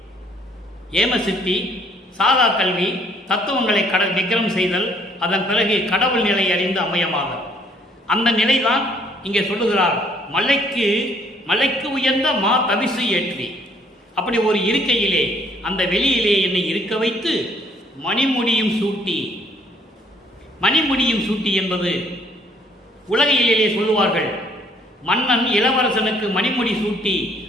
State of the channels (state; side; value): normal; both; correlation 0.63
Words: ஏமசித்தி, சாதா கல்வி, தத்துவங்களை விக்ரம் செய்தல், அதன் பிறகு கடவுள் நிலை அறிந்த அம்மையமாதல். அந்த நிலைதான் இங்கே சொல்லுகிறார். மலைக்கு உயர்ந்த மா தவிசு ஏற்றி, அப்படி ஒரு இருக்கையிலே அந்த வெளியிலே என்னை இருக்க வைத்து மணிமுடியும் சூட்டி. மணிமுடியும் சூட்டி என்பது உலகிலே சொல்லுவார்கள், மன்னன் இளவரசனுக்கு மணிமுடி சூட்டி